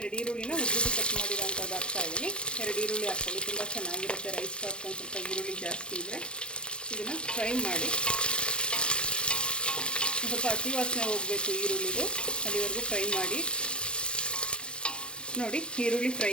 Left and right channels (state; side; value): late; right; 0.054 ms